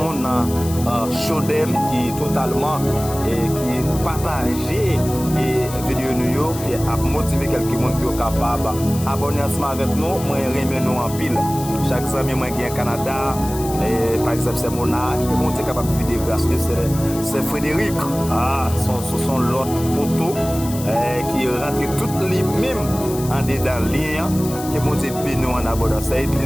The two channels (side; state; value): left; noise; hiss, 12 dB below the sound